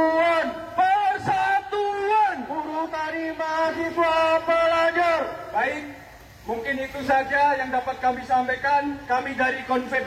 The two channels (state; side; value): identical; both; correlation 1.00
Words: Persatuan! Buruh, tani, mahasiswa, pelajar! Baik, mungkin itu saja yang dapat kami sampaikan. Kami dari